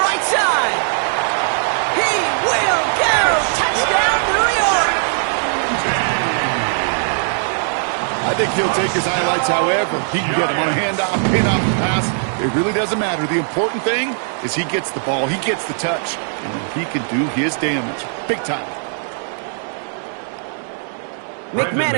right side. He will go! Touchdown, New York! I think he'll take his highlights however. He can get him on a handoff, pin off the pass. It really doesn't matter. The important thing is he gets the ball, he gets the touch, and he can do his damage. Big time.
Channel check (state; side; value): silent; left; digital silence